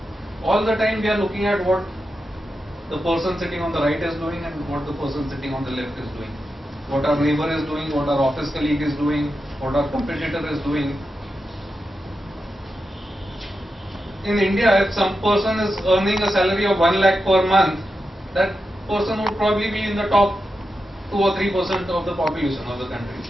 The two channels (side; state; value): both; normal; correlation 0.89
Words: all the time we are looking at what the person sitting on the right is doing and what the person sitting on the left is doing. What our neighbor is doing, what our office colleague is doing, what our competitor is doing. In India, if some person is earning a salary of 1 lakh per month, that person would probably be in the top 2 or 3% of the population of the country.